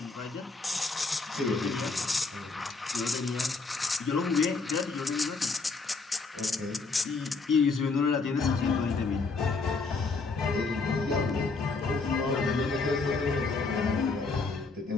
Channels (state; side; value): quieter; right; 4.1 dB